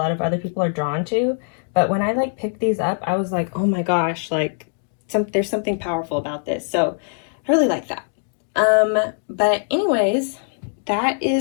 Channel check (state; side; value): silent; right; digital silence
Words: of other people are drawn to, but when I like picked these up, I was like, oh my gosh, like there's something powerful about this. So I really like that. But anyways, that